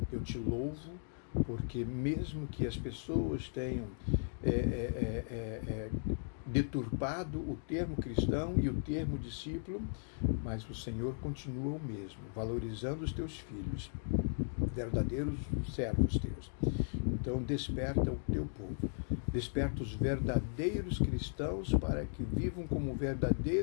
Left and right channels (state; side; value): silent; right; digital silence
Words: eu te louvo porque mesmo que as pessoas tenham deturpado o termo cristão e o termo discípulo, mas o Senhor continua o mesmo, valorizando os teus filhos, verdadeiros servos teus. Então desperta o teu povo, desperta os verdadeiros cristãos para que vivam como